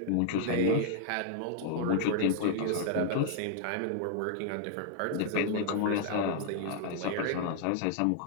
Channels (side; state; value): both; different; correlation 0.00